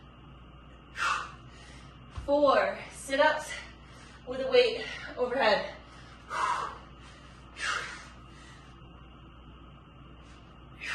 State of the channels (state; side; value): identical; both; correlation 1.00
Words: 4 sit-ups with a weight overhead.